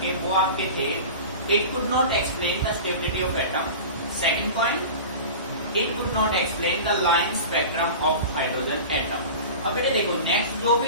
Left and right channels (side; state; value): both; inverted; correlation -0.34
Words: के वो आपके थे, it could not explain the stability of atom. Second point, it could not explain the line spectrum of hydrogen atom. अब बेटे देखो नेक्स्ट जो